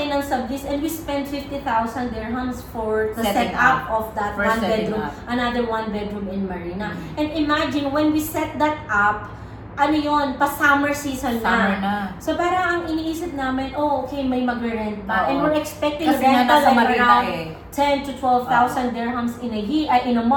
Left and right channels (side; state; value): both; identical; correlation 1.00